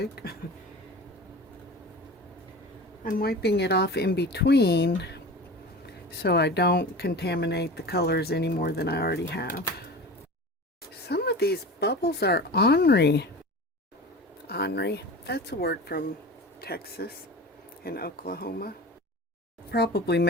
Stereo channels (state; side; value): normal; both; correlation 0.34